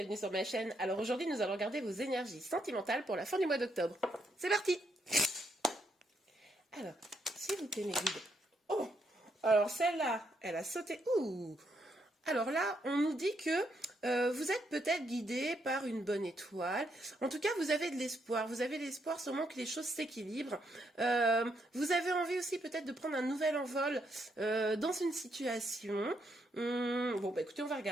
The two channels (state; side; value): normal; both; correlation 0.77